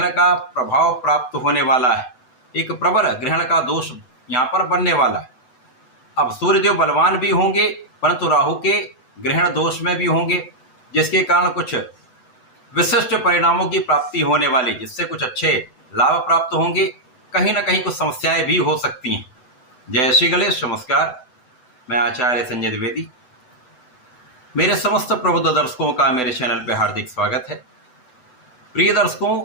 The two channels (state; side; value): late; right; 8.0 ms